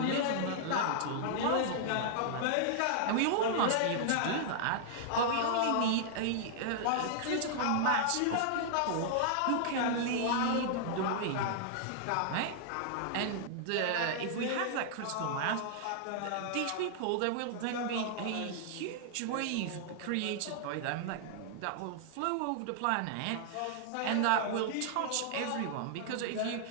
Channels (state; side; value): different; both; correlation -0.01